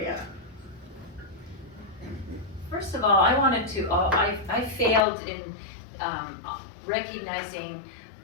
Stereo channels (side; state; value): right; drops out; at 5.1 s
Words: First of all, I wanted to, I failed in recognizing